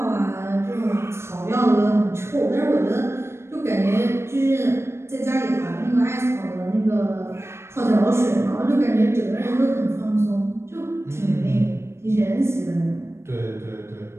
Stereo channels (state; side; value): late; left; 0.13 ms